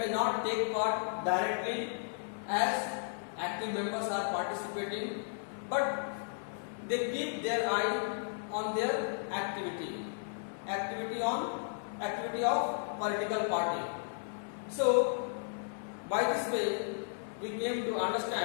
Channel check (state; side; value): silent; right; 55 dB below the other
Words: not take part directly as active members are participating, but they keep their eye on their activity of political party. So by this way we came to